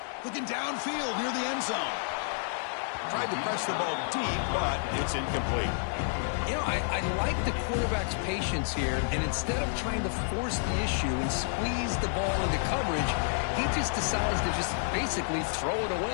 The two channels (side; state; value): right; silent; digital silence